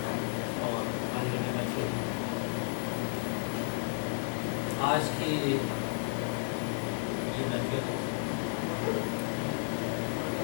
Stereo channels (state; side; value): silent; right; digital silence